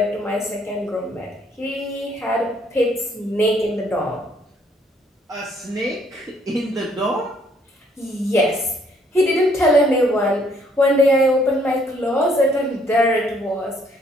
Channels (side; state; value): both; normal; correlation 0.66